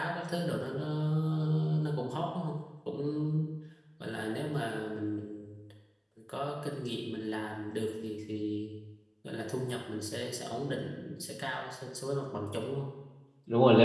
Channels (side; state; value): both; identical; correlation 1.00